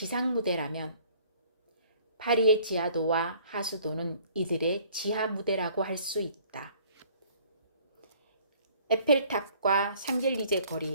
무대라면 파리의 지하도와 하수도는 이들의 지하 무대라고 할 수 있다. 에펠탑과 샹젤리제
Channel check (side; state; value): both; inverted; correlation -0.56